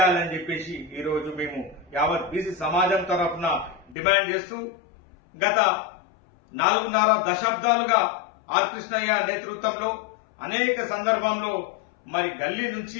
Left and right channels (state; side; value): drops out; right; at 4.0 s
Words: చెప్పేసి ఈరోజు మేము యావత్ బీసీ సమాజం తరఫున డిమాండ్ చేస్తూ గత 4.5 దశాబ్దాలుగా ఆర్ కృష్ణయ్య నేతృత్వంలో అనేక సందర్భంలో మరి గల్లీ